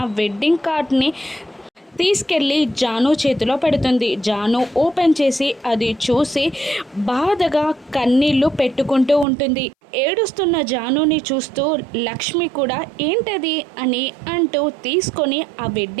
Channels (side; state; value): left; drops out; at 9.2 s